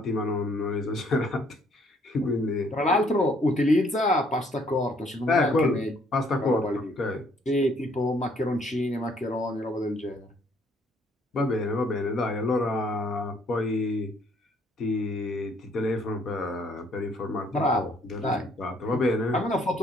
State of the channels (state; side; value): normal; both; correlation 0.64